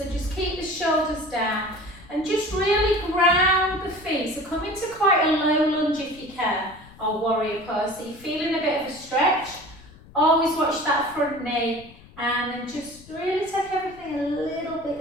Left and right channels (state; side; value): noise; left; rumble, 22 dB below the sound